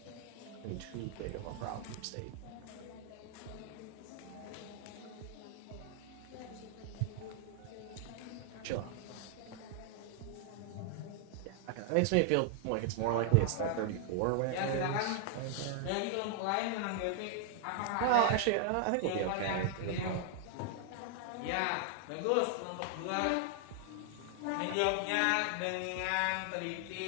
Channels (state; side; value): different; both; correlation 0.00